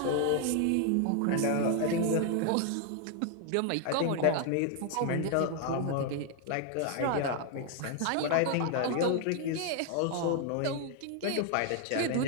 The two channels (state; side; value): different; both; correlation 0.00